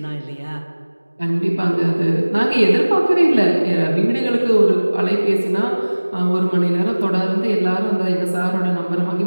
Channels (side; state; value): both; inverted; correlation -1.00